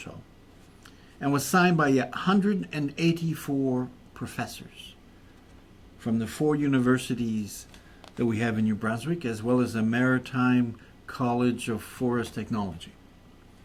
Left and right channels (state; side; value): identical; both; correlation 1.00